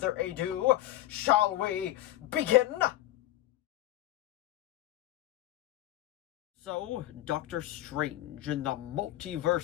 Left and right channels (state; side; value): quieter; right; 14.8 dB